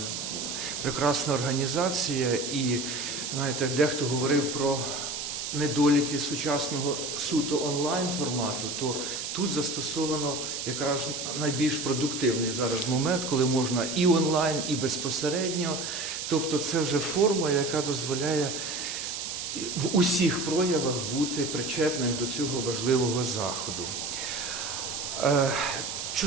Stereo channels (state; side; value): noise; right; hiss, 5 dB below the sound